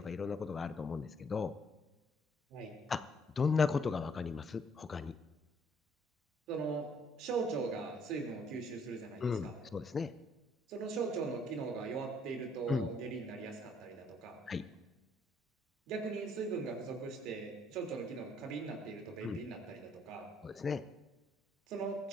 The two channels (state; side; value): normal; both; correlation 0.66